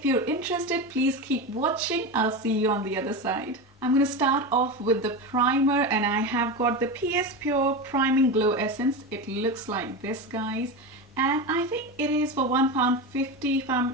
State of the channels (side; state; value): both; normal; correlation 0.21